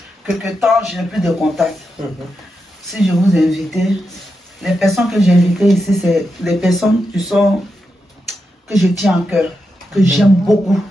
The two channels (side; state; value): both; normal; correlation 0.87